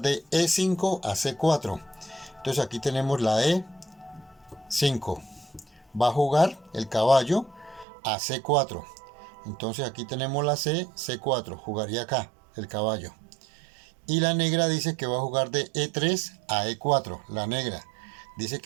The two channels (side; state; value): left; drops out; at 7.9 s